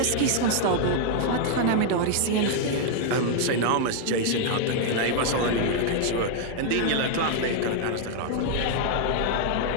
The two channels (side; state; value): both; different; correlation 0.00